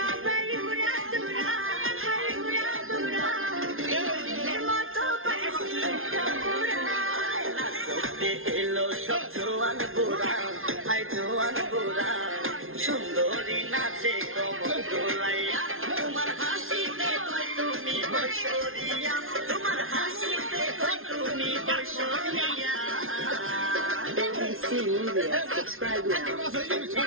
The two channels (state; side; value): late; left; 0.61 ms